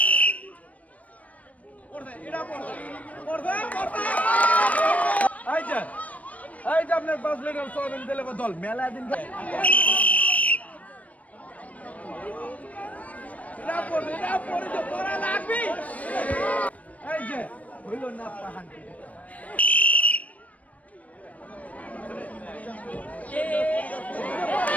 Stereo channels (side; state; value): right; late; 0.068 ms